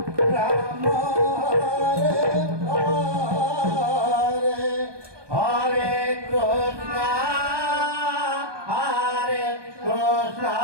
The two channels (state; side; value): late; left; 1.2 ms